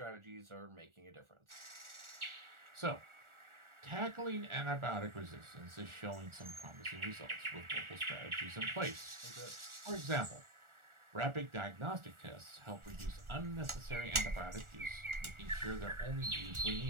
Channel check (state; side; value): late; left; 1.4 ms